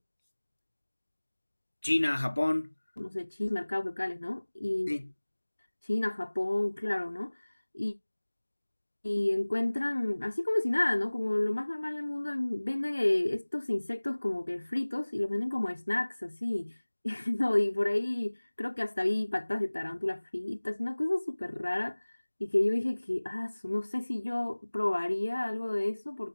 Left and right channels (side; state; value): both; inverted; correlation -1.00